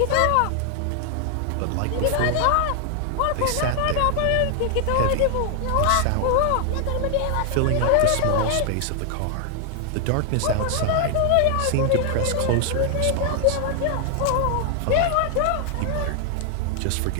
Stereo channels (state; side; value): different; both; correlation 0.00